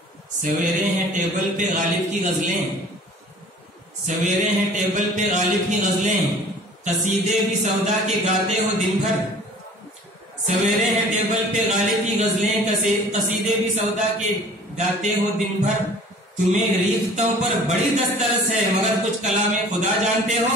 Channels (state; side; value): normal; both; correlation 0.48